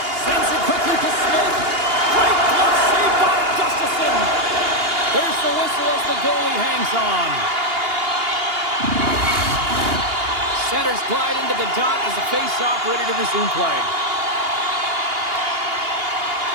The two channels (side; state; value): left; late; 2.8 ms